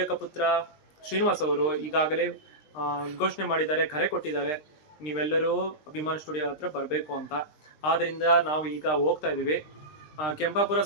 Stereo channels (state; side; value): late; right; 20 ms